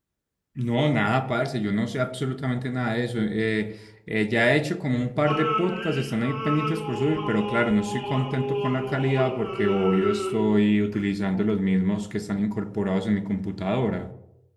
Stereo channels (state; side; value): identical; both; correlation 1.00